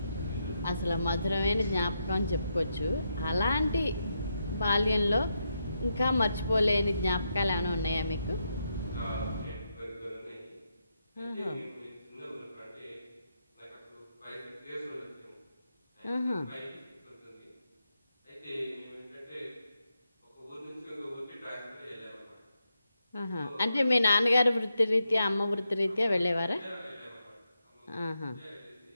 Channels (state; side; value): inverted; both; correlation -0.84